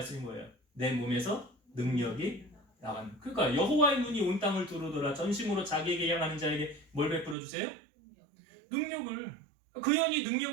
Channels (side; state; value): left; drops out; at 7.4 s